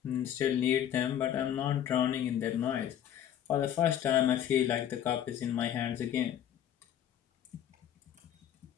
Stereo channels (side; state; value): right; quieter; 10.4 dB